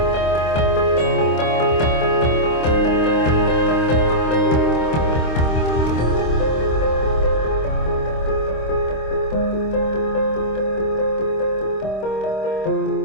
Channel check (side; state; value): right; late; 26 ms